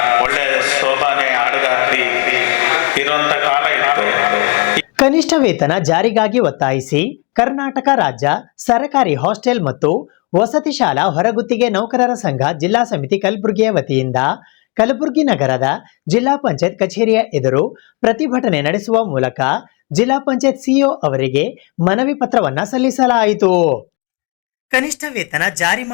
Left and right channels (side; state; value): right; quieter; 31.4 dB